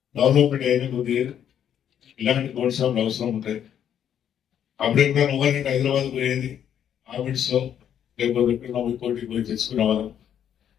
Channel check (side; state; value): right; quieter; 9.4 dB